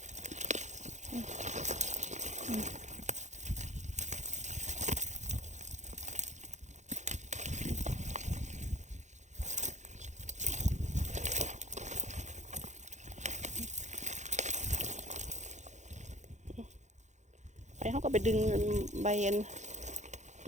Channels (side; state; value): left; late; 0.34 ms